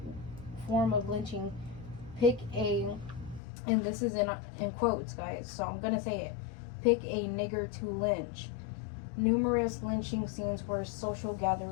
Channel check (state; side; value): drops out; right; at 3.4 s